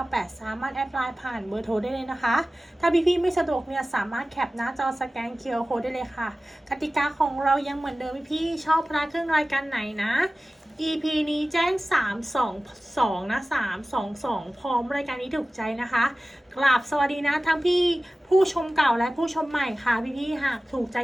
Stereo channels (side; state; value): both; normal; correlation 0.97